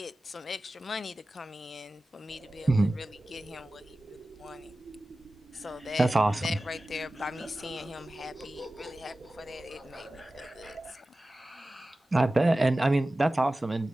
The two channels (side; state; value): both; normal; correlation 0.96